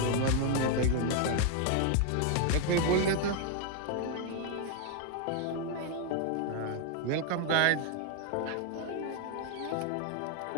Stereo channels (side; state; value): both; different; correlation 0.00